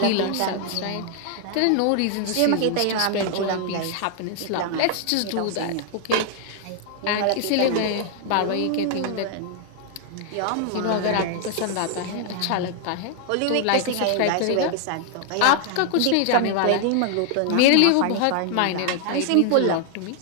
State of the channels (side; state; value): both; different; correlation 0.00